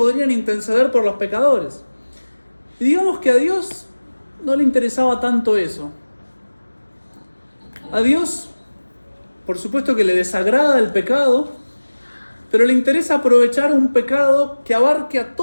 interceder por los pecadores. Y digamos que a Dios no le interesaba tanto eso. A Dios, por supuesto que le desagrada el pecado, pero le interesa aprovechar un pecado que abarque a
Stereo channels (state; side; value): inverted; both; correlation -1.00